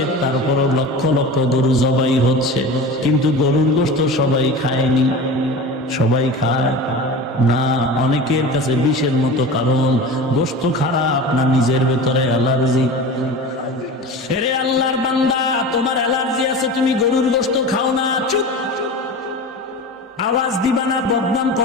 তারপরও লক্ষ লক্ষ গরু জবাই হচ্ছে, কিন্তু গরুর গোশত সবাই খায়নি। সবাই খায় না, অনেকের কাছে বিষের মতো। কারণ গোশত খারাপ না নিজের ভেতরে অ্যালার্জি। এরে আল্লাহর বান্দা, তোমার অ্যালার্জি আছে, তুমি গরুর গোশত খাও না, চুপ। আওয়াজ দিবা না, বদনাম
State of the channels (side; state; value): both; normal; correlation 0.32